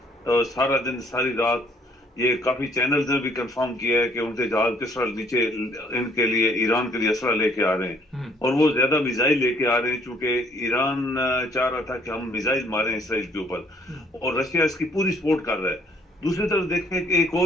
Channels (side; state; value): both; normal; correlation 0.62